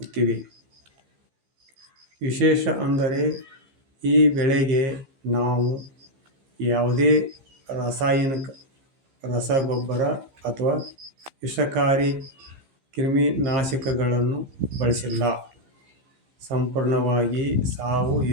ವಿಶೇಷ ಅಂದರೆ ಈ ಬೆಳೆಗೆ ನಾವು ಯಾವುದೇ ರಾಸಾಯನಿಕ ರಸಗೊಬ್ಬರ ಅಥವಾ ವಿಷಕಾರಿ ಕ್ರಿಮಿನಾಶಕಗಳನ್ನು ಬಳಸಿಲ್ಲ. ಸಂಪೂರ್ಣವಾಗಿ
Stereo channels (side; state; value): left; late; 15 ms